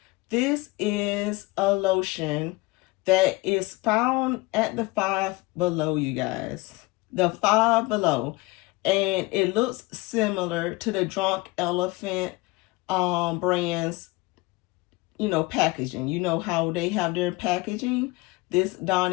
This is a lotion that is found at the Five Below, you guys. The Five Below. And it looks similar to the Drunk Elephant brand's, packaging. You know how they have their packaging? This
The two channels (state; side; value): quieter; right; 22.9 dB